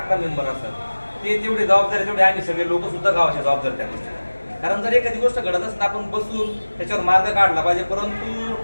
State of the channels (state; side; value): inverted; both; correlation -1.00